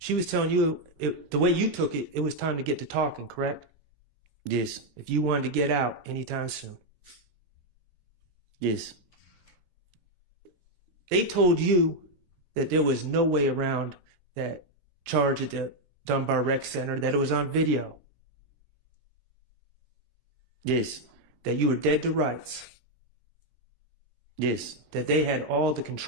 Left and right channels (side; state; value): left; late; 18 ms